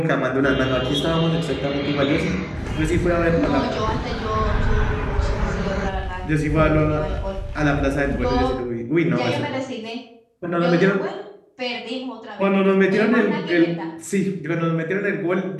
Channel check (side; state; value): both; identical; correlation 1.00